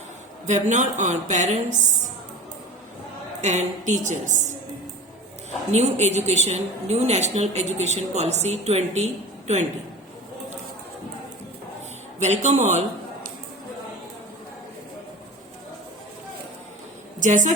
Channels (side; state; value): both; normal; correlation 0.34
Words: Webinar on parents and teachers. New Education, New National Education Policy 2020. Welcome all. जैसा